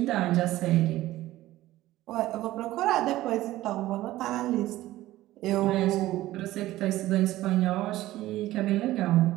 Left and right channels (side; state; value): left; quieter; 15.9 dB